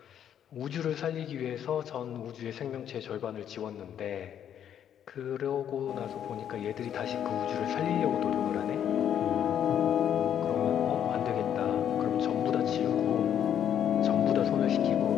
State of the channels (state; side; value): quieter; right; 9.6 dB